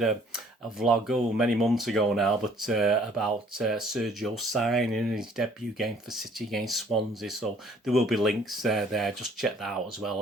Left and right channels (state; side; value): normal; both; correlation 0.57